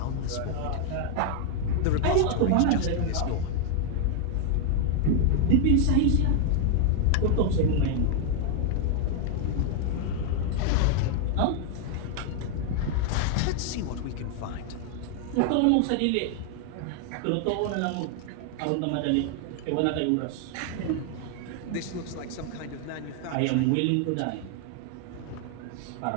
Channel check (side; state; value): both; different; correlation 0.00